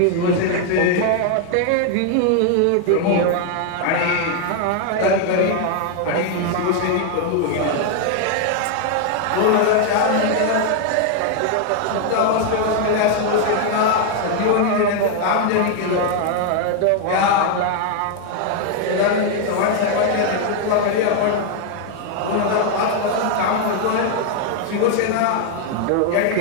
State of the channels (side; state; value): both; different; correlation 0.00